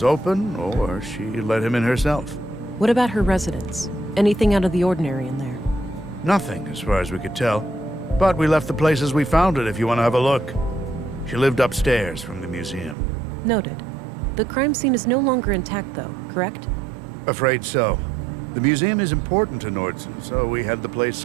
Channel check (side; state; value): left; drops out; at 13.0 s